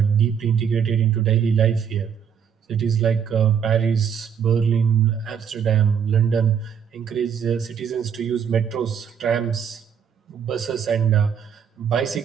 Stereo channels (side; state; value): left; quieter; 7.6 dB